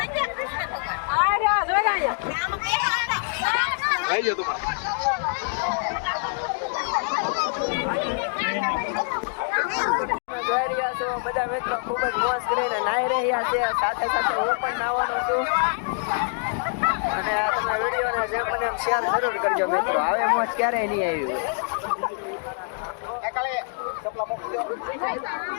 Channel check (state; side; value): silent; right; 62 dB below the other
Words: જોઈ રહ્યા છો બધા મિત્રો ખૂબ જ મોજ કરીને નાહી રહ્યા છે. સાથે સાથે હું પણ નાહવાનો છું. અને તમે વિડીયોને જેમ બને એમ શેર જરૂર કરજો મિત્રો. આવે મોજ ક્યારેય નહીં આવી હોય.